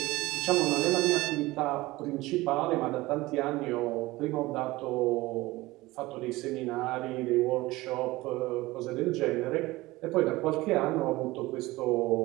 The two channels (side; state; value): left; quieter; 19.6 dB